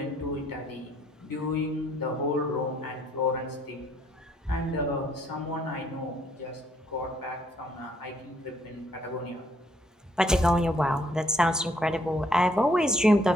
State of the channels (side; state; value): both; normal; correlation 0.67